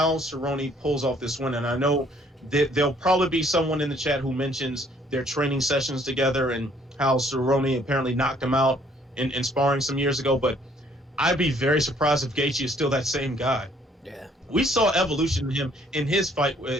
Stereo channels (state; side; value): normal; both; correlation 0.62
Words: Cerrone pulls off this win. And I know that there'll probably be someone in the chat who mentions their training sessions together and how Cerrone apparently knocked him out in sparring some years ago. But I'd be very surprised if Gaethje is still that same guy. Yeah. We saw evolution in him in his fight